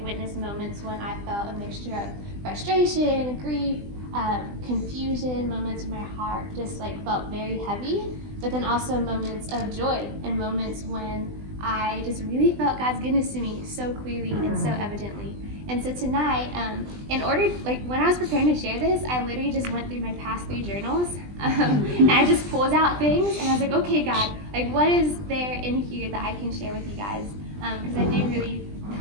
witnessed moments when I felt a mixture of frustration, grief, confusion, moments in my heart just felt very heavy, but then also moments of joy and moments when I just really felt God's goodness to me so clearly and so evidently. And so tonight, when I was preparing to share this, I literally just went through my past 3 journals, and I just pulled out things, and I was like, okay, God, what is there in here that I can share with you guys? Because I do really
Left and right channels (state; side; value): late; left; 20 ms